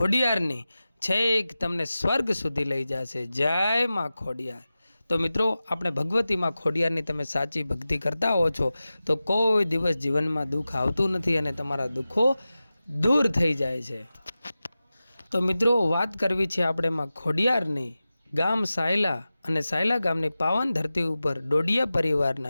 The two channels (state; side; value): inverted; both; correlation -0.95